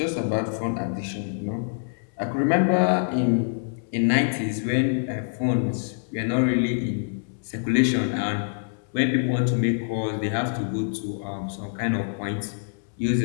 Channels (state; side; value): silent; right; digital silence